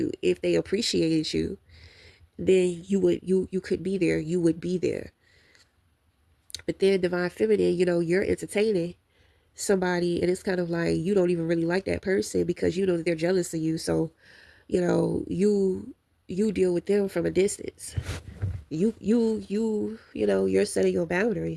If they appreciated you, then you could be there. You would be there. But then Divine Feminine, you're entertaining somebody and it's kind of like you don't even really like that person because you know that they're jealous of you. So, you deal with them from a distance. You're setting your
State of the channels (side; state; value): both; identical; correlation 1.00